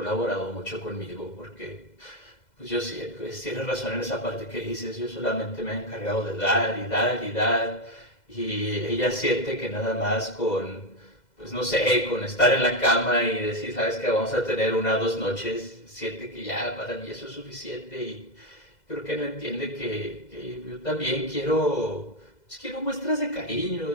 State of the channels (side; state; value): right; late; 2.0 ms